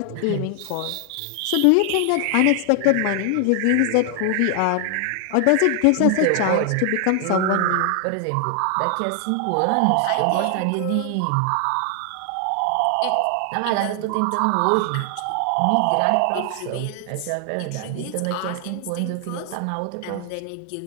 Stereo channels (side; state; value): both; different; correlation 0.00